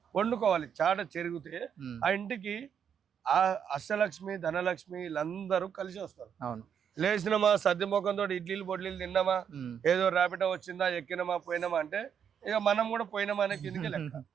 వండుకోవాలి. చాట చెరిగితే ఆ ఇంటికి ఆ అష్టలక్ష్మి ధనలక్ష్మి వీళ్ళందరూ కలిసి వస్తారు. లేచినమా సద్ది ముఖంతో ఇడ్లీలు బొడ్లీలు తిన్నామా, ఏదో ర్యాపిడో వచ్చిందా ఎక్కినమా పోయినామా అంటే ఇక మనం కూడా పోయినామా అనే కిందకి లెక్క.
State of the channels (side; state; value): left; quieter; 7.9 dB